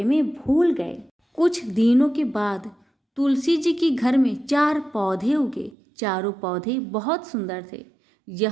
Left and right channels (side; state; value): left; drops out; at 5.8 s